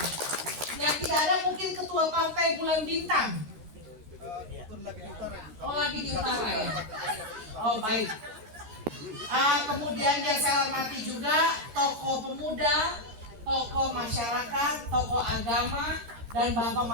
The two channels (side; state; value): left; late; 13 ms